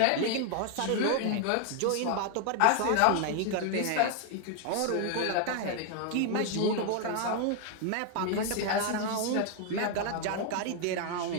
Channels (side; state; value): both; different; correlation 0.00